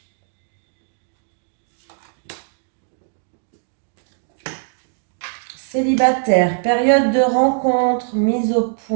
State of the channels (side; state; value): left; silent; digital silence